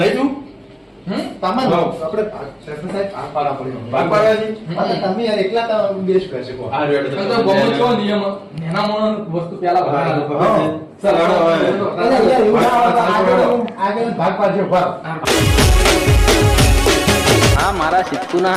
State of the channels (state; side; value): identical; both; correlation 1.00